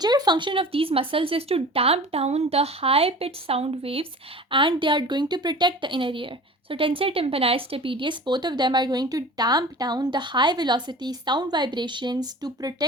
function of these muscles is to damp down the high pitched sound waves, and they are going to protect the inner ear. So tensor tympani, stapedius, both of them are going to damp down the high velocity sound vibrations to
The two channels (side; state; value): both; normal; correlation 0.40